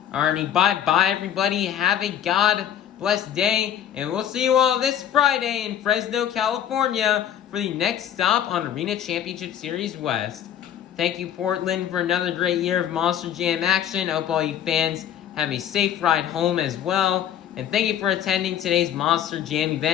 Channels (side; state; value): right; quieter; 10.0 dB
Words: Alrighty, bye-bye everybody. Have a God-blessed day, and we'll see you all this Friday in Fresno, California for the next stop on Arena Championship Series West. Thank you, Portland, for another great year of Monster Jam action. I hope all you fans have a safe ride home as well. And thank you for attending today's Monster Jam